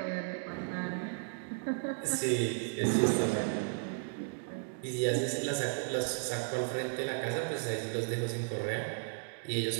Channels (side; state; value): left; silent; digital silence